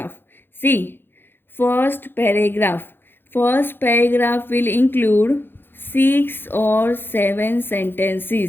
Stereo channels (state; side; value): late; right; 0.10 ms